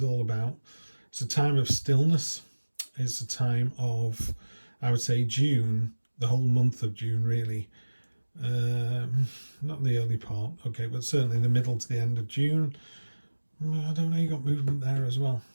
all about, it's a time of stillness. It's a time of, I would say, June, the whole month of June, really. Not the early part, okay, but certainly the middle to the end of June. I don't know, you got movement there as well.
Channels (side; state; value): both; inverted; correlation -1.00